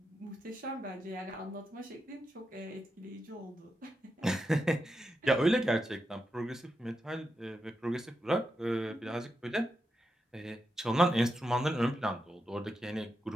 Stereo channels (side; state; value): both; normal; correlation 0.87